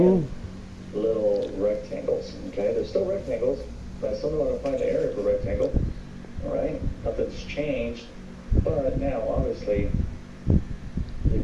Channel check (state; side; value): identical; both; correlation 1.00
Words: little rectangles. Okay, they're still rectangles, but I still want to find the area for rectangle. All right, nothing's changed, but now obviously